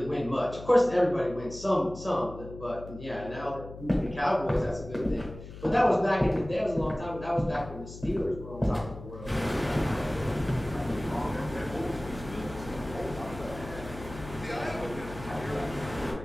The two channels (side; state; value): left; noise; hum, 13 dB below the sound